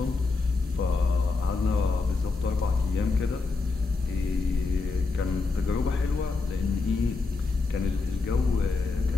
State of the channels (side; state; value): right; quieter; 4.0 dB